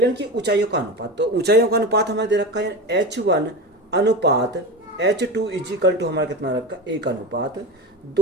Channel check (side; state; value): both; normal; correlation 0.25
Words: की ऊंचाइयों का अनुपात। तो ऊंचाइयों का अनुपात हमें दे रखा है h1 अनुपात h2 इज इक्वल टू हमारा कितना रखा?